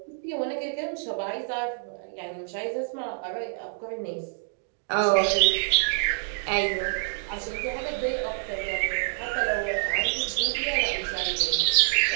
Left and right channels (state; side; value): silent; left; digital silence